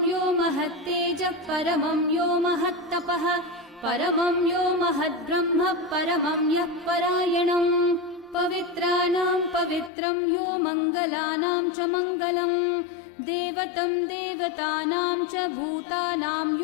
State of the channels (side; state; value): right; drops out; at 9.9 s